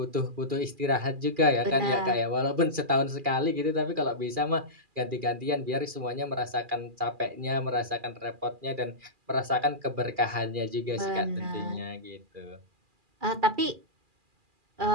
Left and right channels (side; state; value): left; late; 2.4 ms